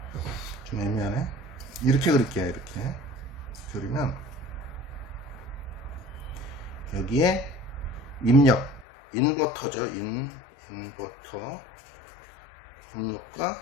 좀 애매하네. 이렇게 그릴게요. 이렇게 그리면 여기에 입력 인버터죠. 인버터 입력과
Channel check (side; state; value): right; drops out; at 8.8 s